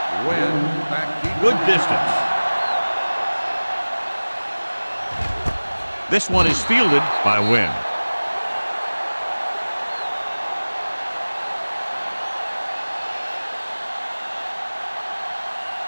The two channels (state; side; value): inverted; both; correlation -1.00